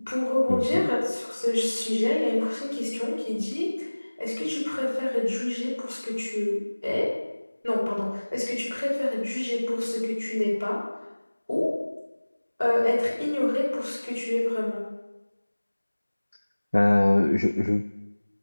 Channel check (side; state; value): both; inverted; correlation -1.00